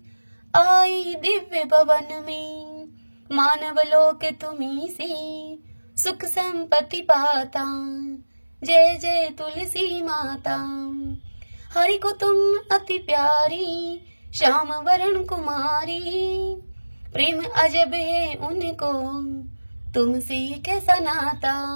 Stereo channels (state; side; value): inverted; both; correlation -1.00